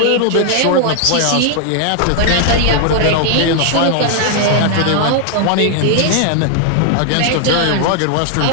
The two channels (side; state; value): both; different; correlation 0.00